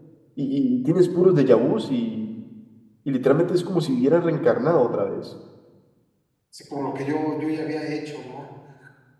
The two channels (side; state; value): both; identical; correlation 1.00